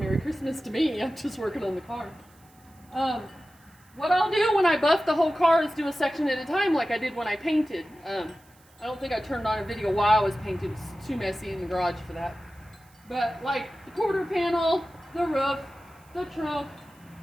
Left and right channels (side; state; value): right; noise; hiss, 30 dB below the sound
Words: Christmas to me. I'm just working on the car. What I'll do when I buff the whole car is do a section at a time, like I did when I painted. I don't think I turned on a video while I was painting. It's too messy in the garage for that. But like the quarter panel, the roof, the trunk,